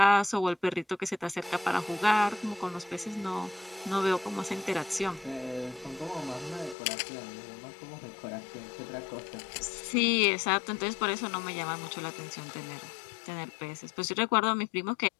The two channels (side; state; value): right; drops out; at 6.8 s